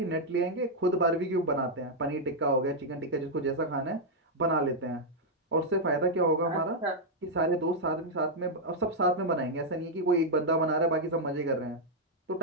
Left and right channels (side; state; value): both; normal; correlation -0.02